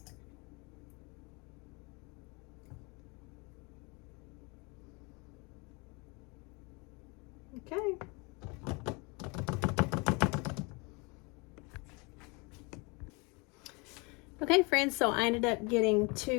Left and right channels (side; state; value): right; quieter; 29.2 dB